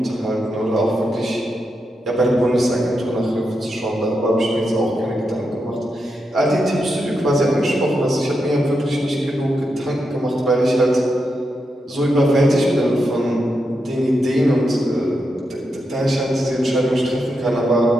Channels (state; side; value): normal; both; correlation 0.85